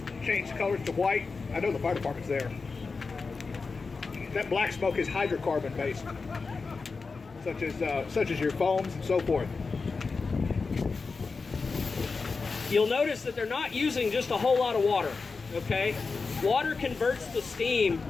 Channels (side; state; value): right; quieter; 4.4 dB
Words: change colors to white. I know the fire department's there. That black smoke is hydrocarbon based, such as your foams and so forth. You'll notice that they're not using just a whole lot of water, okay? Water converts to steam